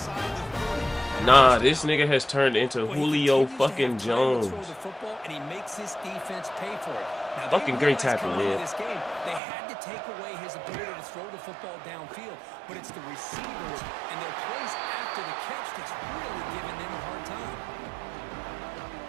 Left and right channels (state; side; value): drops out; left; at 9.4 s